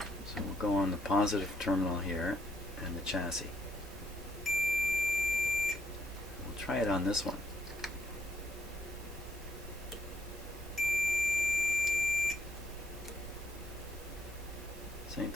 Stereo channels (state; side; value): normal; both; correlation 0.73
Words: So we'll go on the positive terminal here and the chassis. We'll try it on this one. Same